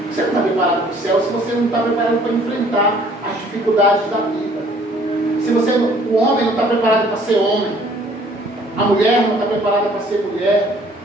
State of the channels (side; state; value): both; normal; correlation 0.58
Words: Você não está preparado para o céu se você não está preparado para enfrentar as dificuldades da vida. Se o homem não está preparado para ser homem, a mulher não está preparada para ser mulher,